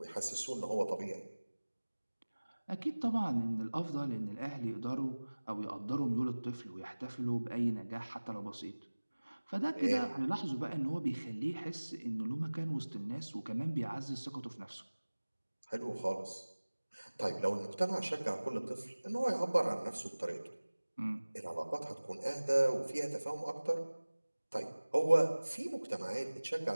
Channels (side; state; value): both; inverted; correlation -1.00